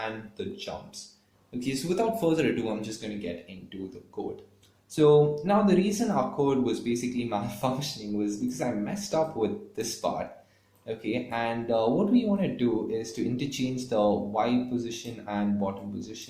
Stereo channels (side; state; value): both; identical; correlation 1.00